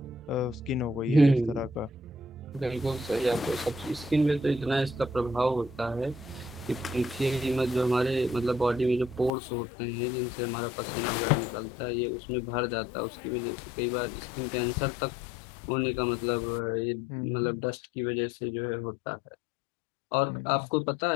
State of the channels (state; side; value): drops out; right; at 9.3 s